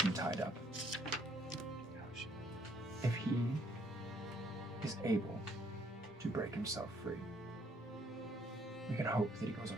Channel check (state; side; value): normal; both; correlation 0.66